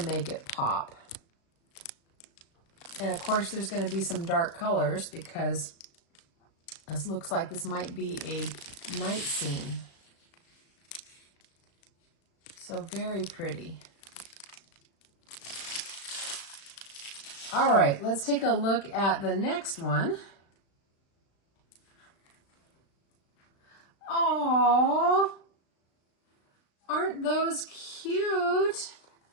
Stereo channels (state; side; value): late; right; 36 ms